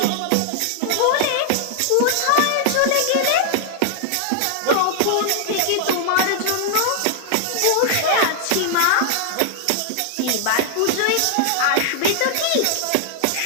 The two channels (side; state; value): both; different; correlation 0.00